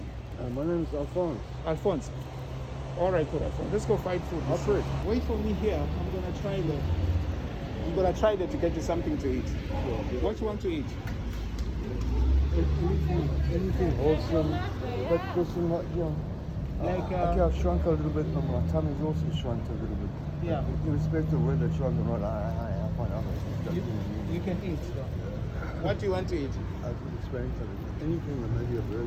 My name is Alphonse. Alphonse. All right, good, Alphonse. Let's go find food. Alfred. Wait for me here. I'm gonna try there to get you something to eat. What you want to eat? Anything wholesome, but person, I've shrunk a little bit, but my tummy's also shrunk a little bit. Yeah. Irrespective of whether it's shrunk or not, I find other. You can eat. What do you want to eat? I could explain to them. Anything that maybe a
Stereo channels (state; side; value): identical; both; correlation 1.00